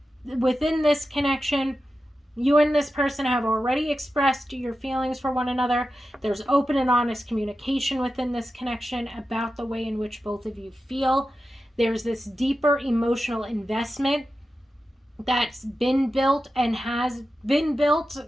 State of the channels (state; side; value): normal; both; correlation 0.92